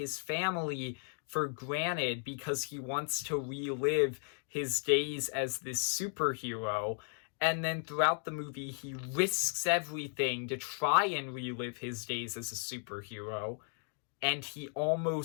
family for granted because he wants to relive his days as this superhero. And then throughout the movie, he risks everything to try and relive his days as a superhero. And he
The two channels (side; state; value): right; silent; 54 dB below the other